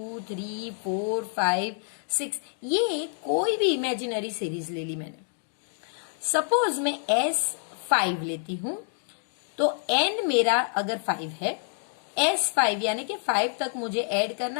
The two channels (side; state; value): right; silent; 60 dB below the other